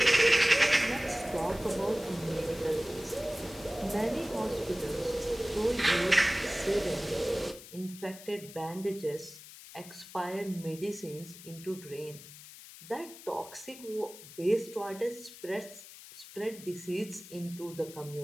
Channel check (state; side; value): noise; left; hiss, 16 dB below the sound